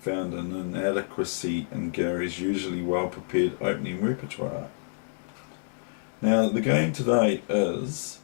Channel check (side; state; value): right; silent; digital silence